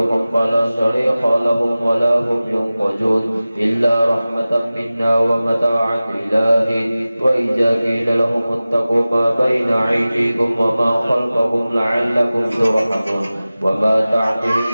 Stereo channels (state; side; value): inverted; both; correlation -0.97